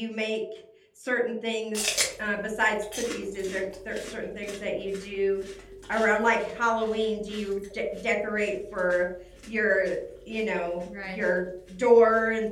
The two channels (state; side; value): identical; both; correlation 1.00